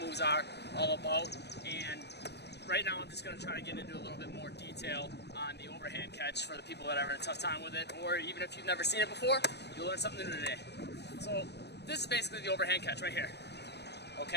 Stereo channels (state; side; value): late; right; 0.49 ms